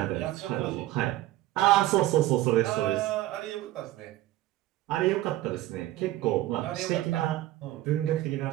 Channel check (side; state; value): left; quieter; 16.0 dB